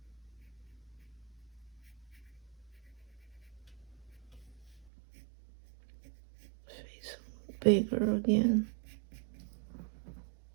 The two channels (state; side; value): drops out; left; at 4.9 s